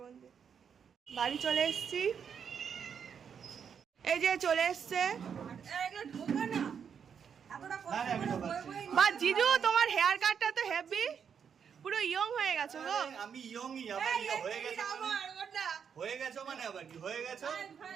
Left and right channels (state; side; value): quieter; left; 7.2 dB